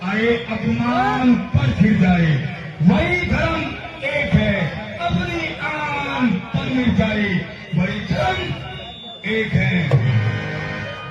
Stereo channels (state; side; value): identical; both; correlation 1.00